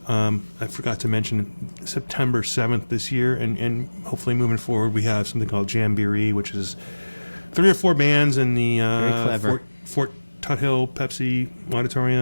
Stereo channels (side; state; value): both; inverted; correlation -1.00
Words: I forgot to mention September 7th this year, and hopefully moving forward we have something called Jamboree, which is 3 or 4 bands in the Fort Tuthill Pepsi